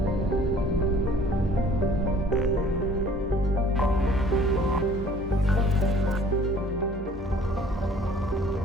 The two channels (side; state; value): both; normal; correlation 0.53